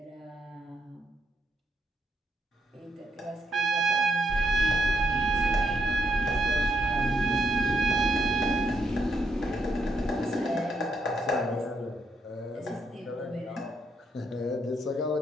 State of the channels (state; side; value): normal; both; correlation 0.76